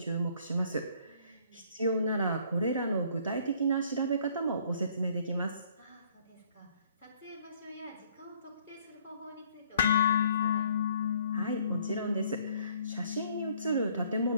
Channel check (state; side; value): inverted; both; correlation -0.61